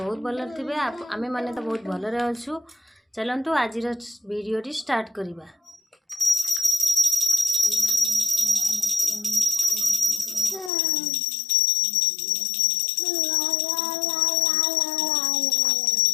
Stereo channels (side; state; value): right; drops out; at 10.7 s